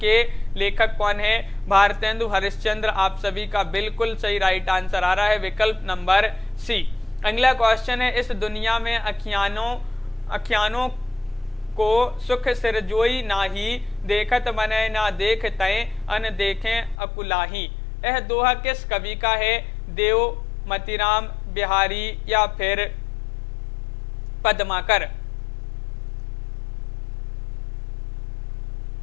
लेखक कौन है? भारतेंदु हरिश्चंद्र आप सभी का बिल्कुल सही राइट आंसर आ रहा है विकल्प नंबर सी। अगला क्वेश्चन है, इस दुनिया में अखियानों को सुख सिरजोई नाही, देखत मनै ना देख तय अन देखें अकुलाही। यह दोहा किस कवि का है? देव, मतीराम, बिहारी या फिर पद्माकर।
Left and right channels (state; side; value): drops out; right; at 16.9 s